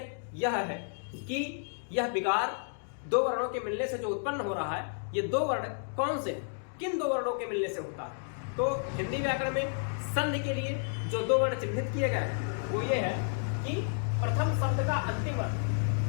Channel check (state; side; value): silent; right; digital silence